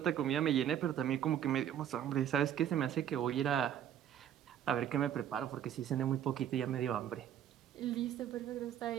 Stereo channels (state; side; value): quieter; left; 10.1 dB